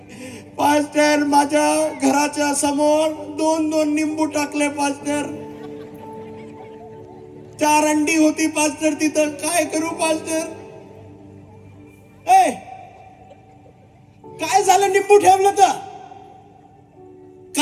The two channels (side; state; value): both; identical; correlation 1.00